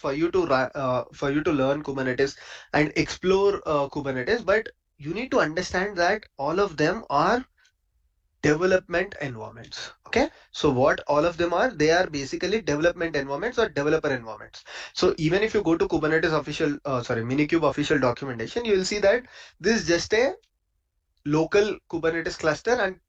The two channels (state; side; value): identical; both; correlation 1.00